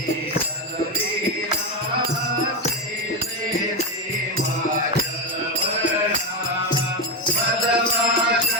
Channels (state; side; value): normal; both; correlation 0.12